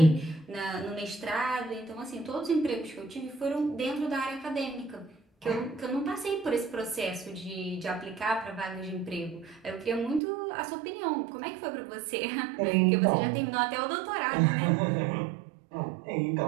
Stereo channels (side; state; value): left; drops out; at 10.2 s